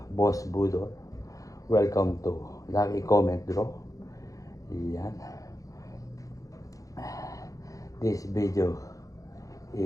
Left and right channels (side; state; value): right; late; 0.17 ms